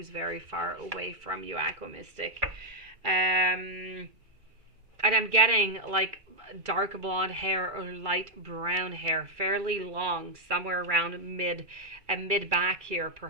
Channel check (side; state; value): left; late; 2.4 ms